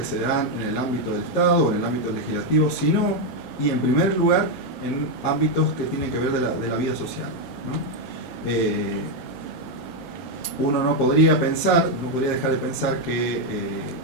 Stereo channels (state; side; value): normal; both; correlation 0.03